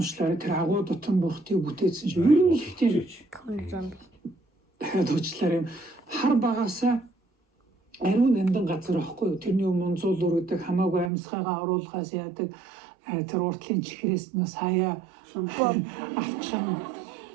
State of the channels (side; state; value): left; drops out; at 11.1 s